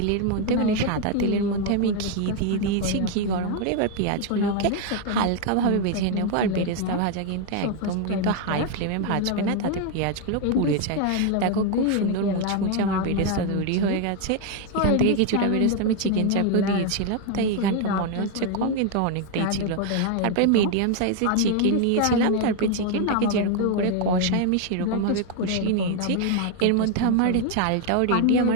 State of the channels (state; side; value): different; both; correlation 0.00